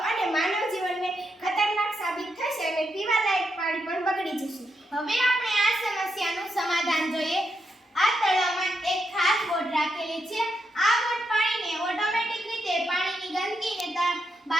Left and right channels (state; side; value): normal; both; correlation 0.83